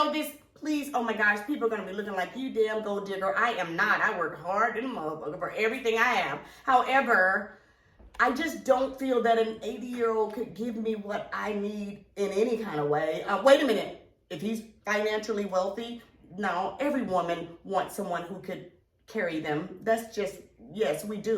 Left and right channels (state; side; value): identical; both; correlation 1.00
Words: this, please, oh my gosh, people are going to be looking like you damn gold digger. I am not. I work hard and motherfucker for everything I have. However, I just don't feel that an 80-year-old could give me what I need in any kind of way. Wait a minute. If he's financially wealthy, no, every woman wants someone who could carry them. That's just, yes, we